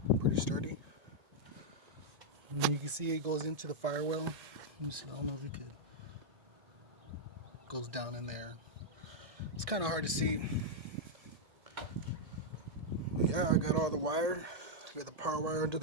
Pretty sturdy. And you can see it goes into the firewall. Let me see, I don't know if you could. Goes down in there. It's kind of hard to see. But yeah, I got all the wire. I got the power wire under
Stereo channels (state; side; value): late; left; 1.8 ms